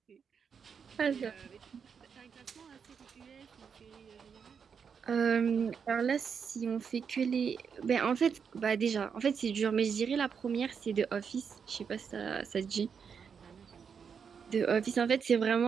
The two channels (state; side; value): quieter; left; 6.6 dB